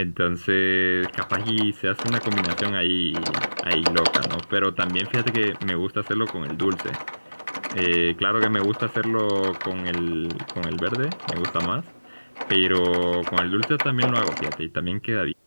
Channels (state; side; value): inverted; both; correlation -1.00